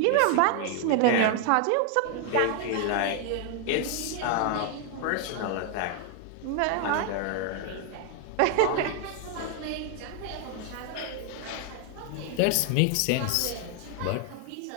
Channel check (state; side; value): different; both; correlation 0.00